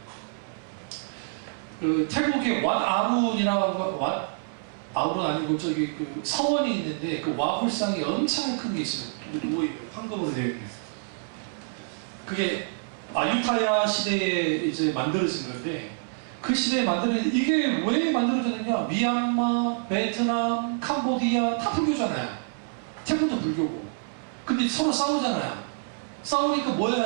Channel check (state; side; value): silent; left; 60 dB below the other